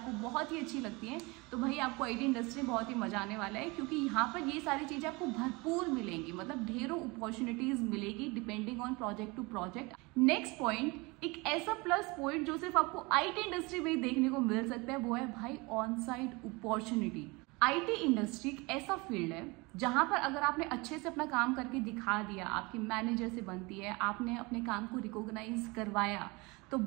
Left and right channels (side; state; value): left; quieter; 25.6 dB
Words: बहुत ही अच्छी लगती हैं, तो भाई आपको आईटी इंडस्ट्री में बहुत ही मजा आने वाला है। क्योंकि यहाँ पर ये सारी चीज़ें आपको भरपूर मिलेंगी, मतलब ढेरों अपॉर्चुनिटीज मिलेगी depending on project to project. Next point, एक ऐसा प्लस पॉइंट जो सिर्फ आपको आईटी इंडस्ट्री में ही देखने को मिल सकता है, वो है भाई on site opportunity. IT industry एक ऐसा फील्ड है जहां पर अगर आपने अच्छे से अपना काम करके दिखा दिया, आपकी मैनेजर से बनती है, आपने अपने काम को रिकॉग्नाइज करवाया, तो